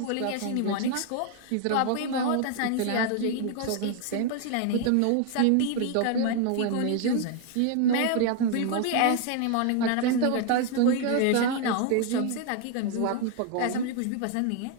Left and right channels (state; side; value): different; both; correlation 0.00